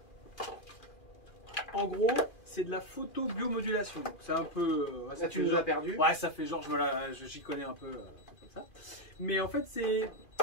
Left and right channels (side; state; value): right; late; 2.4 ms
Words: En gros, c'est de la photo biomodulation. C'est un peu. Là, tu nous as perdu. Ouais, ça fait genre, j'y connais un peu comme ça. Mais en fait,